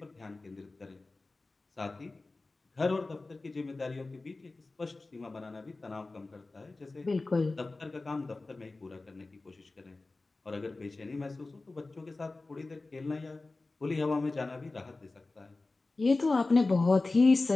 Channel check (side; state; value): right; quieter; 3.3 dB